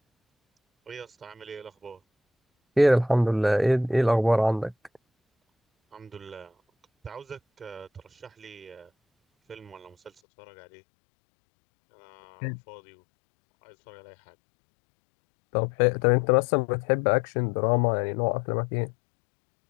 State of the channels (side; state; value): right; drops out; at 10.1 s